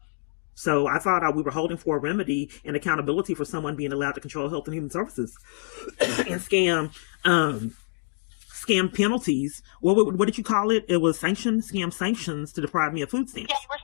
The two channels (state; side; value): silent; right; digital silence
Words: So I thought we were holding for a remedy and accountability for someone being allowed to control Health and Human Services and scam penalties. What did you call it? It was scam sanctions to deprive me of food stamps. Yeah, you were